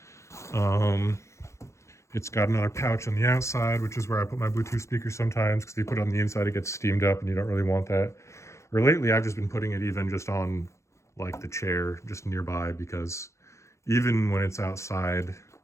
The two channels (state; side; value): late; right; 0.14 ms